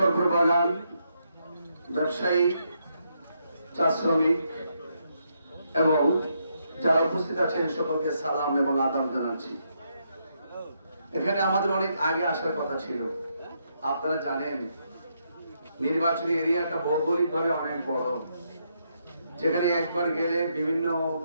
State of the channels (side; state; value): both; inverted; correlation -0.78